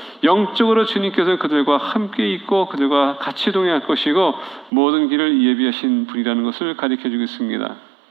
영적으로 주님께서 그들과 함께 있고 그들과 같이 동행할 것이고 모든 길을 예비하신 분이라는 것을 가르쳐주고 있습니다.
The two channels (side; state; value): left; drops out; at 4.7 s